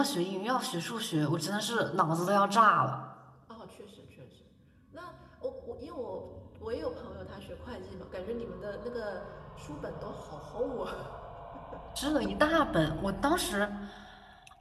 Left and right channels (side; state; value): both; identical; correlation 1.00